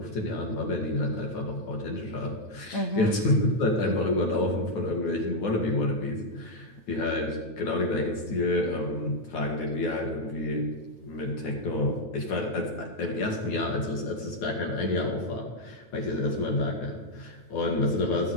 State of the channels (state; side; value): late; right; 9.7 ms